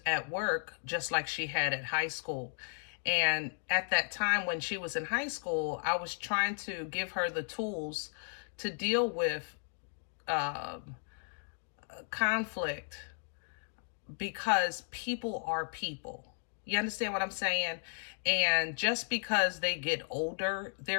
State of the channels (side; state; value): right; silent; digital silence